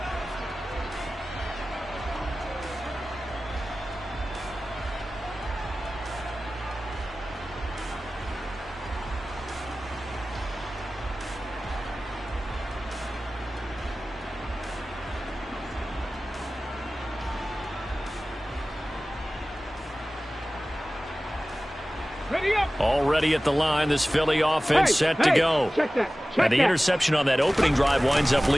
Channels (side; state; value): both; normal; correlation 0.97